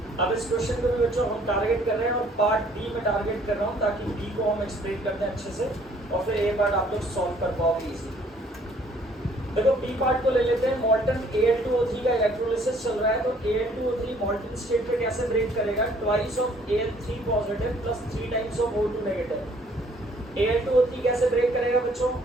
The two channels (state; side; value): normal; both; correlation 0.60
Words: अब इस question को भी बच्चों हम target कर रहे हैं और पार्ट बी में टारगेट कर रहा हूँ ताकि बी को हम एक्सप्लेन कर दें अच्छे से और फिर ए पार्ट आप लोग सॉल्व कर पाओगे इजी. देखो बी पार्ट को ले लेते हैं. मॉल्टन Al2O3 का इलेक्ट्रोलिसिस चल रहा है तो Al2O3 मॉल्टन स्टेट पे कैसे ब्रेक करेगा, twice of Al3 positive plus 3 times of O2 negative. Al2O3 कैसे ब्रेक करेगा बच्चों,